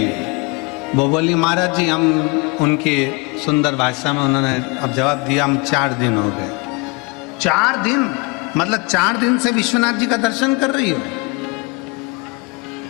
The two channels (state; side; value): quieter; right; 27.9 dB